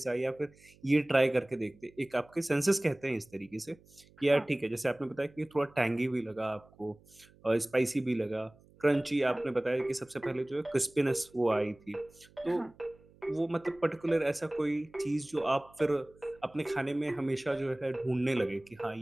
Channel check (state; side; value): noise; right; hum, 27 dB below the sound